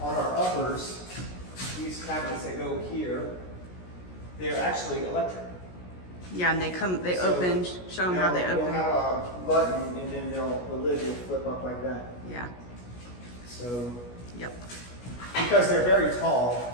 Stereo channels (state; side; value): late; right; 17 ms